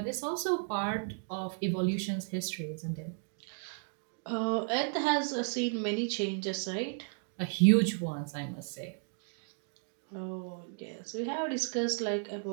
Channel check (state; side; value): silent; left; 55 dB below the other